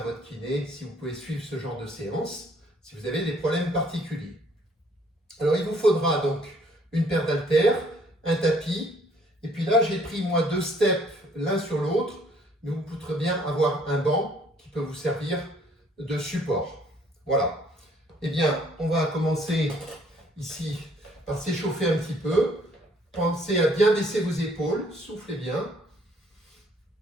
votre kiné, si vous pouvez suivre ce genre de séance, si vous avez des problèmes particuliers. Alors il vous faudra donc une paire d'haltères, un tapis, et puis là j'ai pris moi 2 steps l'un sur l'autre, mais vous pourrez bien avoir un banc qui peut vous servir de support. Voilà. Eh bien, on va commencer ici par s'échauffer un petit peu. Pensez à bien baisser vos épaules, soufflez bien.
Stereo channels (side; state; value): both; normal; correlation 0.62